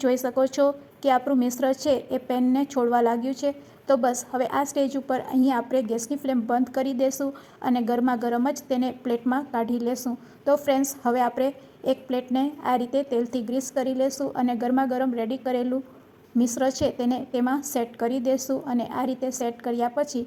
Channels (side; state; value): both; identical; correlation 1.00